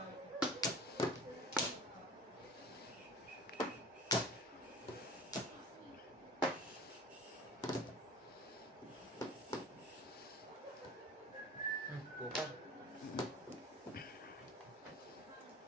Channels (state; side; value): normal; both; correlation 0.41